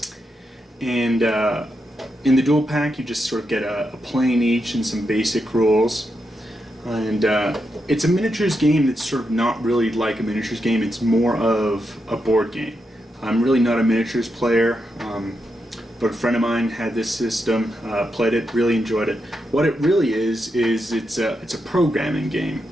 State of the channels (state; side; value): normal; both; correlation 0.85